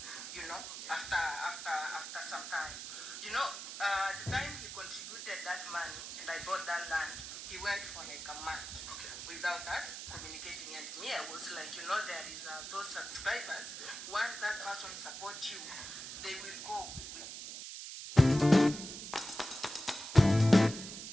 you know, after some time. You know, the time he contributed that money and I bought that land, he went for like a month without us communicating. And me, I was like, you know, there is those subscribers. Once that person supports you, they will go.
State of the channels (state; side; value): noise; right; hiss, 9 dB below the sound